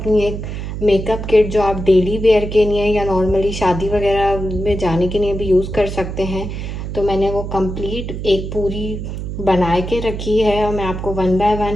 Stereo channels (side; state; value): right; noise; hum, 6 dB below the sound